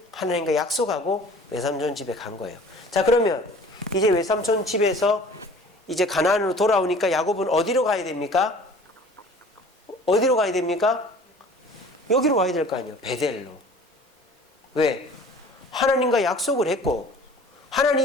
하나님과 약속하고 외삼촌 집에 간 거예요. 자, 그러면 이제 외삼촌 집에서 이제 가나안으로 돌아오니까 야곱은 어디로 가야 됩니까? 어디로 가야 됩니까? 여기로 가야 될 거 아니에요. 베델로. 왜? 하나님과 약속을 했고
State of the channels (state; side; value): normal; both; correlation 0.47